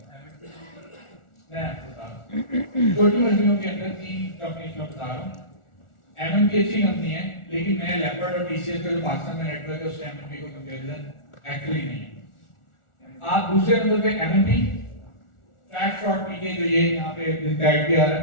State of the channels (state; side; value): late; right; 1.4 ms